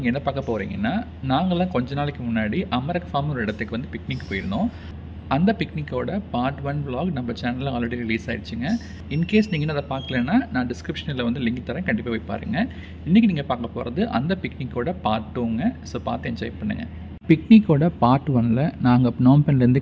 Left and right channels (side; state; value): both; identical; correlation 1.00